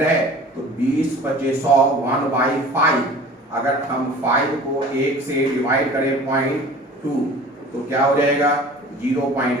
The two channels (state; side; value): normal; both; correlation 0.43